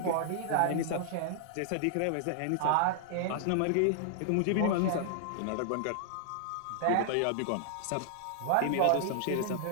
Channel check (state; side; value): different; both; correlation -0.01